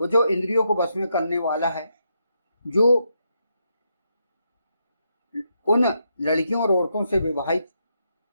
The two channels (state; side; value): inverted; both; correlation -0.80